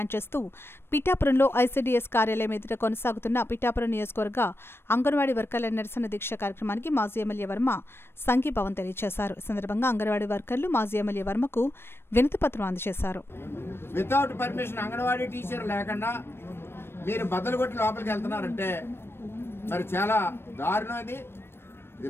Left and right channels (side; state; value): right; late; 0.12 ms